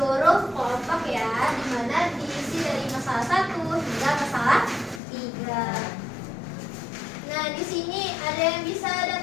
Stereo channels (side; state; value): right; drops out; at 5.0 s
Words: kelompok ya, di mana diisi dari masalah 1 hingga masalah 3. Nah, di sini ada yang bisa